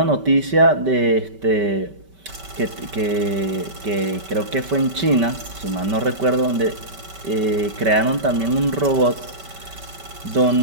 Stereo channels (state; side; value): late; left; 5.2 ms